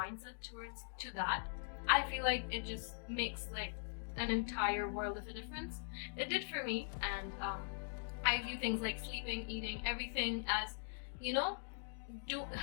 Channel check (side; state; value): right; silent; digital silence